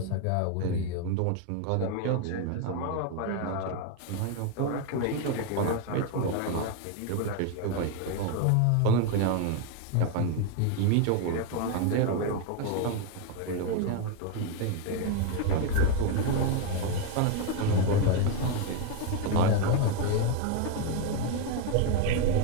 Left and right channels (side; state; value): both; different; correlation 0.01